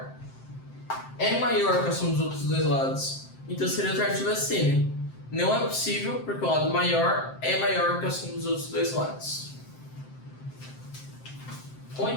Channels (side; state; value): right; late; 7.6 ms